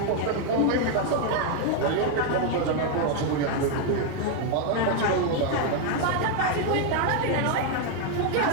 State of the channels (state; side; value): different; both; correlation 0.01